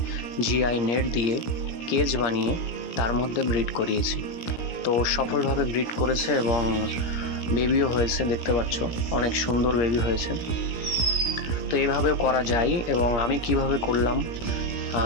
জিআই নেট দিয়ে কেজ বানিয়ে তার মধ্যে ব্রিড করিয়েছি। তো সফলভাবে ব্রিড করেছে এবং বেবিও হয়েছে, দেখতে পাচ্ছ অনেক সুন্দর বেবি হয়েছে। তো এইভাবেও করা যায়। এবং আমি কিভাবে করলাম,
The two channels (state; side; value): late; right; 17 ms